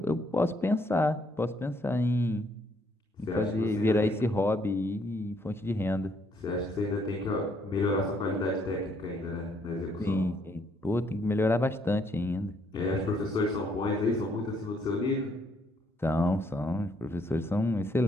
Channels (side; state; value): both; normal; correlation 0.69